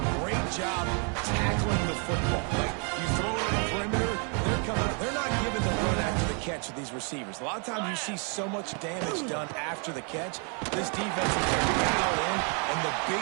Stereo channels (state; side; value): quieter; left; 38.3 dB